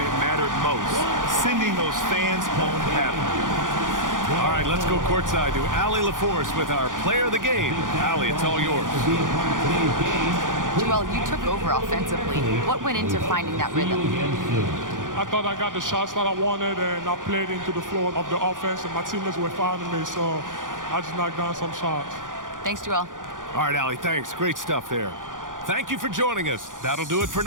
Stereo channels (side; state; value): left; late; 0.88 ms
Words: it mattered most, sending those fans home happy. All right, let's go courtside to Allie LaForce with our player of the game. Allie, it's all yours. Joel, you took over offensively. What went into finding that rhythm? I thought I got the shots that I wanted, and I played into the flow of the offense, and my teammates were finding me, so I just knocked down some shots. Thanks, Joel. All right, Allie, thanks. Great stuff there. Thank you for joining us. That'll do it for